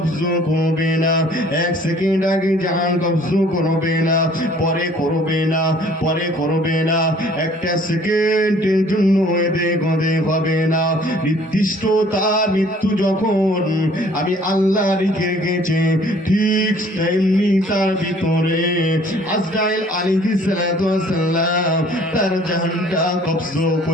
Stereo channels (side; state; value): both; normal; correlation 0.55